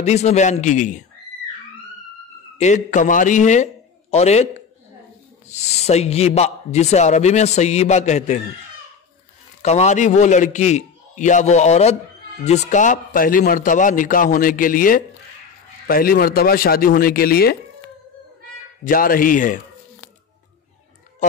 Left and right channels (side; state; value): right; quieter; 6.1 dB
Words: میں بیان کی گئی ہیں، ایک کنواری ہے اور ایک سیبہ، جسے عربی میں سیبہ کہتے ہیں۔ کنواری وہ لڑکی یا وہ عورت جس کا پہلی مرتبہ نکاح ہونے کے لیے، پہلی مرتبہ شادی ہونے کے لیے جا رہی ہے،